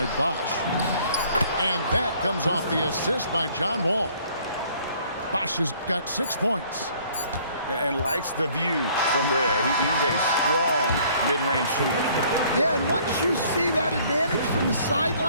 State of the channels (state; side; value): inverted; both; correlation -0.58